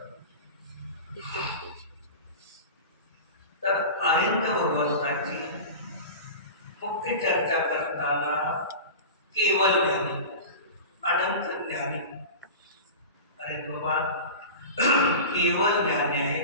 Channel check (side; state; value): both; inverted; correlation -0.31